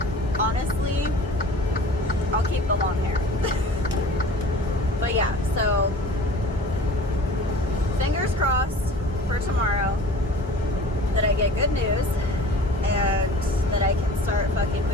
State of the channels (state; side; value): normal; both; correlation 0.43